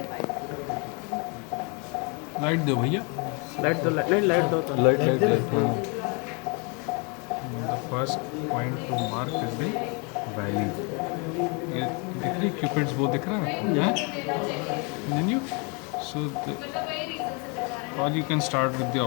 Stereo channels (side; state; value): right; quieter; 32.8 dB